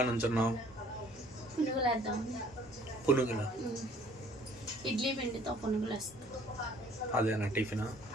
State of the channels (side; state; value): both; normal; correlation 0.56